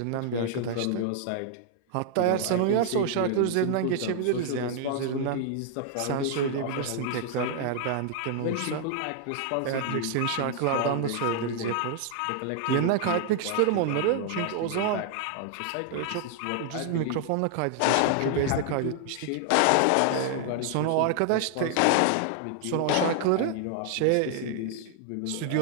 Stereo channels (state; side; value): different; both; correlation 0.00